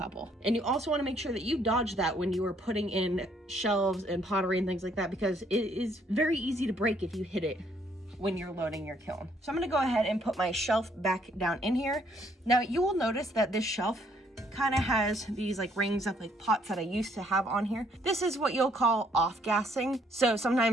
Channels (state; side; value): normal; both; correlation 0.67